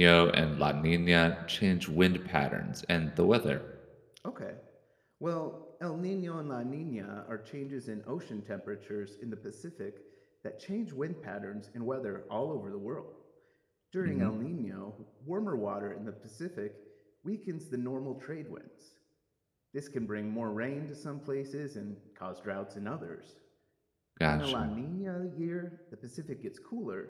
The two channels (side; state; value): both; identical; correlation 1.00